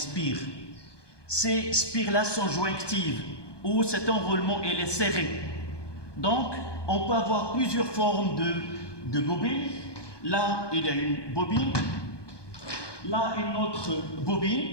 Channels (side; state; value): right; late; 1.2 ms